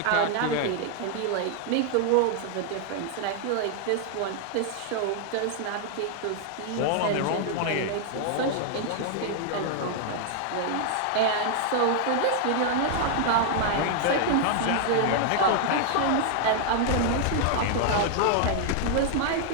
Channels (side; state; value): both; different; correlation 0.00